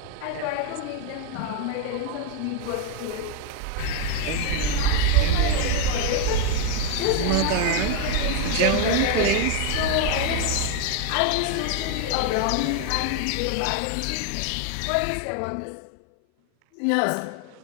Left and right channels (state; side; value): different; both; correlation 0.01